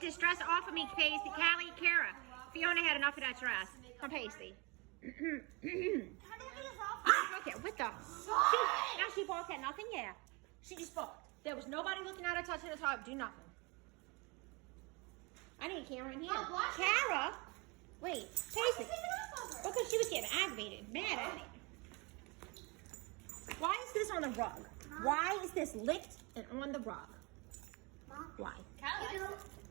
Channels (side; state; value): left; quieter; 28.0 dB